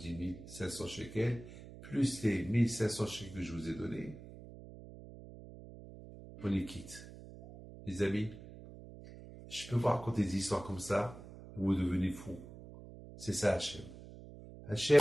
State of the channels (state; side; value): noise; right; hum, 16 dB below the sound